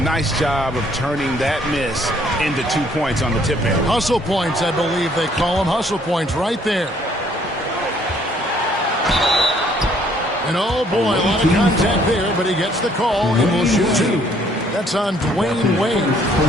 nice job of turning that miss into 2 points on the tip end. Hustle points, I believe they call them. Hustle points right there. And oh boy, a lot of contact there, but he gets the call and will shoot two. That's on Dwayne Wade.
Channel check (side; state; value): both; normal; correlation 0.63